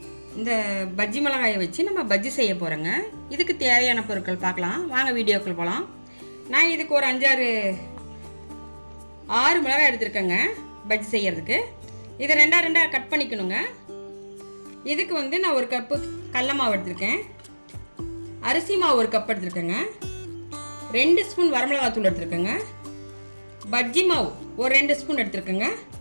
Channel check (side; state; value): both; inverted; correlation -1.00